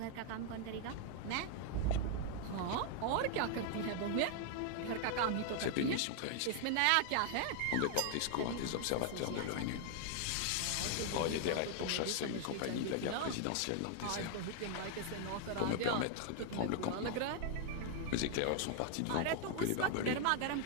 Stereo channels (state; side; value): different; both; correlation 0.00